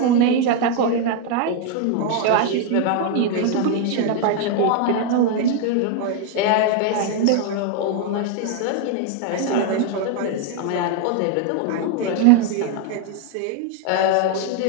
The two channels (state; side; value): different; both; correlation 0.01